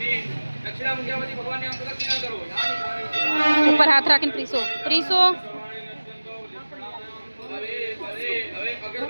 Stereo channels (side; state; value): both; inverted; correlation -1.00